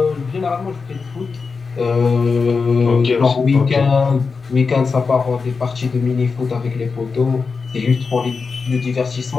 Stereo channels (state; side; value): quieter; right; 4.8 dB